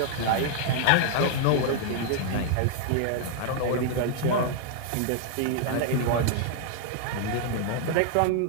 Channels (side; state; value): both; different; correlation 0.00